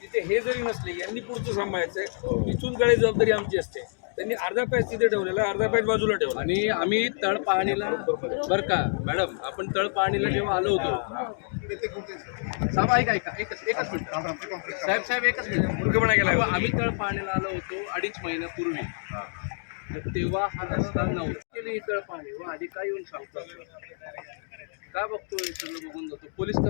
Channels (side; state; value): right; silent; digital silence